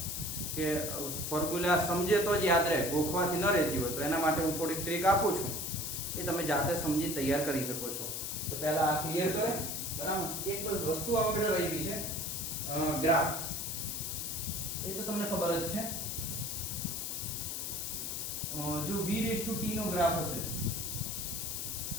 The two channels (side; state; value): left; noise; hiss, 3 dB below the sound